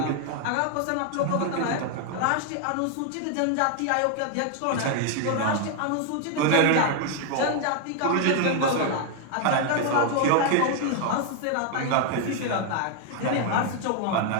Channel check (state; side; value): different; both; correlation 0.00